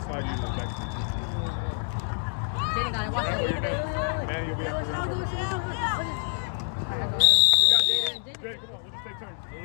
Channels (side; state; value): right; silent; digital silence